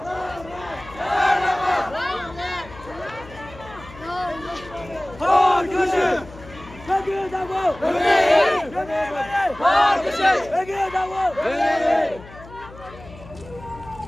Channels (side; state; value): left; noise; hum, 18 dB below the sound